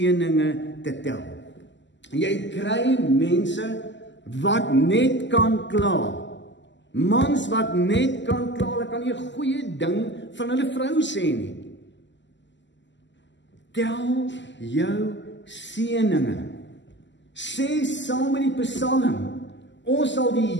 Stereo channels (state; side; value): late; right; 0.53 ms